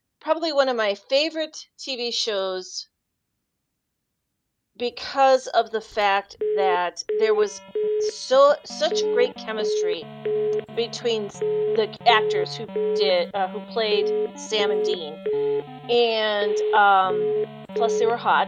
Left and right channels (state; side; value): identical; both; correlation 1.00